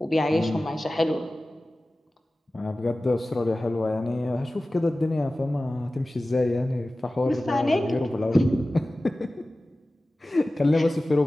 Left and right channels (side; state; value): both; normal; correlation 0.96